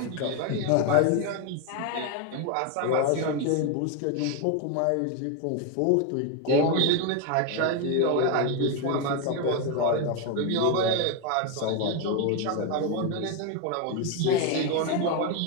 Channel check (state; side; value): different; both; correlation 0.02